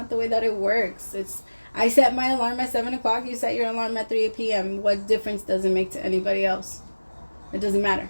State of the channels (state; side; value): inverted; both; correlation -1.00